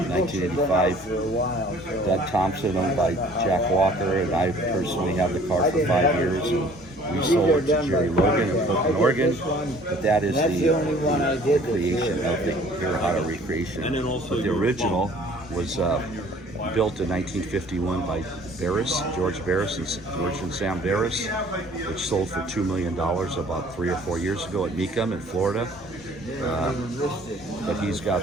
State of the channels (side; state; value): both; normal; correlation 0.53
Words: in 1985. Doug Thompson, owned by Jack Walker, and I personally have the car for 5 years. And we sold it to Jerry Logan in Portland, Oregon. But that is the creation of the Hirohata recreation. But the original was built in 1951 by George Barris and Sam Barris, which sold for $2 million about 3 or 4 years ago at Mecum in Florida. But